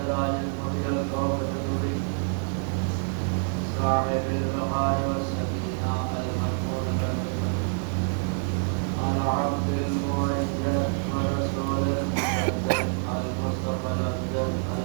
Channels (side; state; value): left; silent; 60 dB below the other